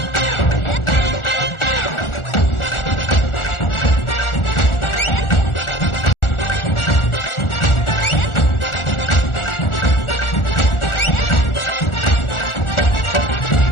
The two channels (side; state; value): right; late; 1.4 ms